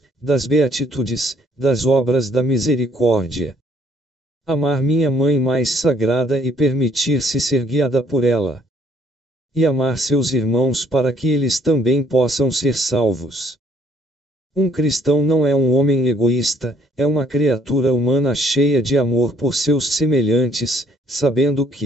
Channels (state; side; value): normal; both; correlation 0.64